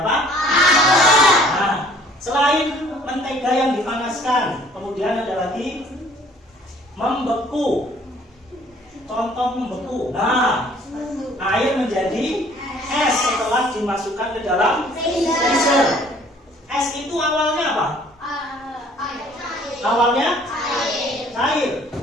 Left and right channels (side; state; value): both; normal; correlation 0.56